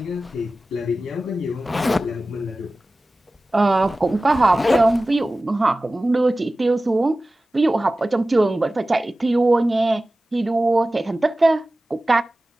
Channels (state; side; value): normal; both; correlation 0.96